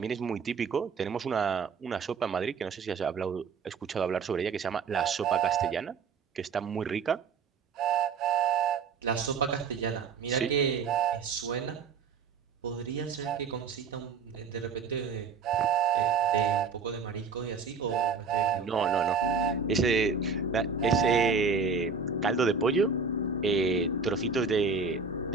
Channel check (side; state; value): left; quieter; 5.2 dB